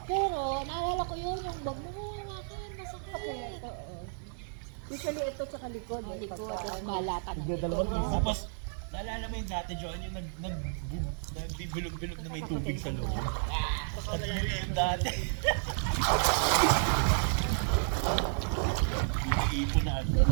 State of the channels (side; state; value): left; silent; digital silence